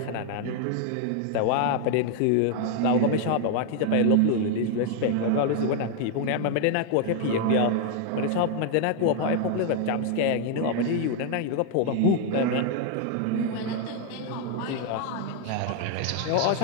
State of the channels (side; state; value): both; different; correlation 0.00